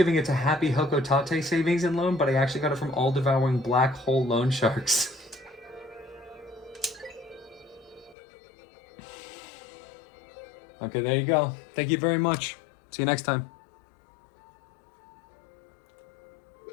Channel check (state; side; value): drops out; right; at 8.2 s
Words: it to Happy Hokotate Savings and Loan, but I actually got it from all-devouring black hole loan sharks. Okay, there you go. Thank you very much. See you next time.